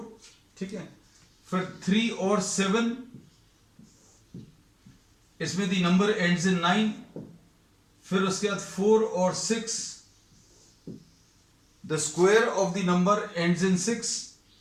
ठीक है. फिर 3 और 7, इसमें द नंबर एंड्स इन 9. फिर उसके बाद 4 और 6, the square of the number ends in 6.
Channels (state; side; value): identical; both; correlation 1.00